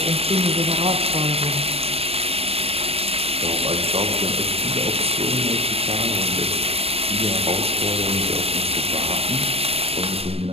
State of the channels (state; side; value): late; left; 0.28 ms